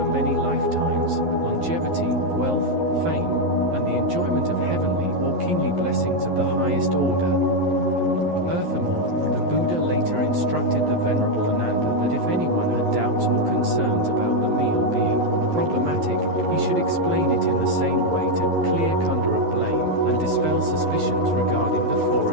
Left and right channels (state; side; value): late; left; 11 ms